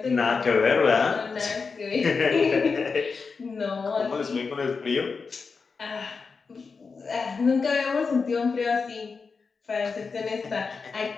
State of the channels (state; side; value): quieter; right; 4.9 dB